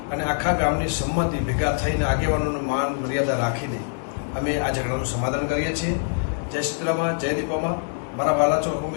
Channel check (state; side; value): silent; right; 63 dB below the other